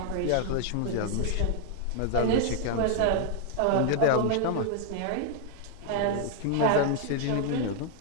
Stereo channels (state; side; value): different; both; correlation 0.00